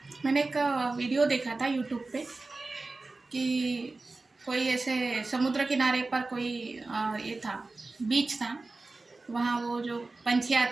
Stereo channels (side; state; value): left; quieter; 3.4 dB